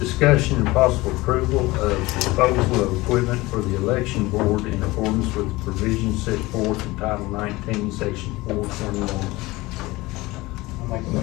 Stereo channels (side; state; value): right; quieter; 20.6 dB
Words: and possible approval of disposal of equipment for the election board in accordance with the provisions set forth in Title 19, Section 421. I'll make a